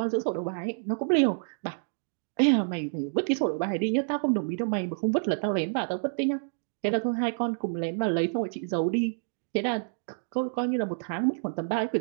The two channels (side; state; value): left; silent; digital silence